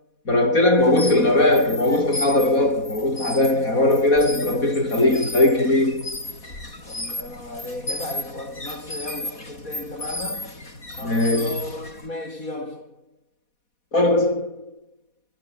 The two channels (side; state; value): right; late; 4.1 ms